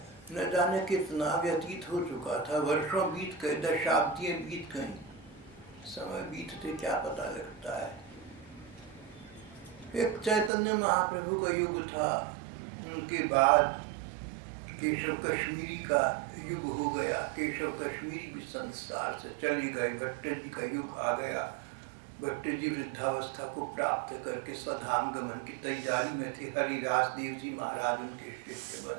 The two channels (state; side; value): drops out; left; at 10.5 s